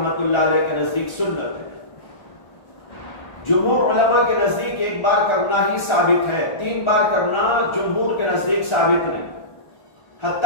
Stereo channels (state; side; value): late; right; 1.4 ms